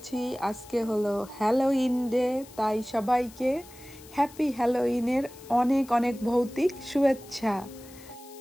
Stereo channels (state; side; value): noise; left; hiss, 21 dB below the sound